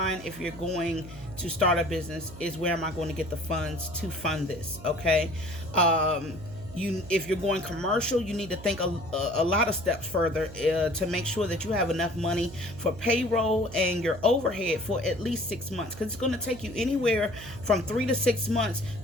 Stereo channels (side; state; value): right; noise; hum, 15 dB below the sound